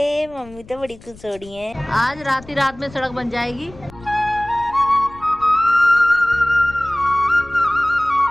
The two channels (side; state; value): left; noise; rumble, 21 dB below the sound